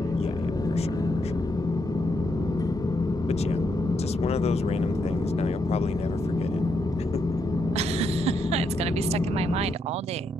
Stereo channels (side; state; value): both; normal; correlation 0.79